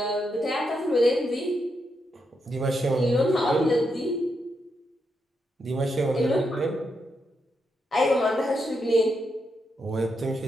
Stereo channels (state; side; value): normal; both; correlation 0.82